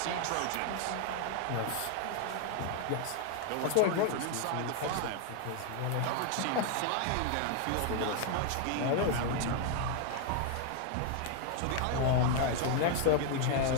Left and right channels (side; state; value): both; different; correlation 0.01